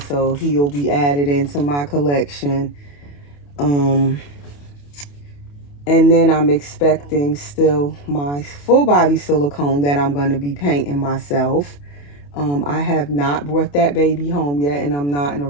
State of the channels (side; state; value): right; late; 28 ms